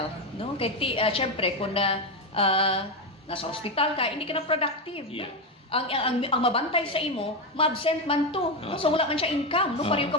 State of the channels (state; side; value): normal; both; correlation 0.11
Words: no kay syempre kung nasa ospital ka hindi ka na productive no? Ang mabantay sa imo ma-absent man to no so wala man siya income no pareho ka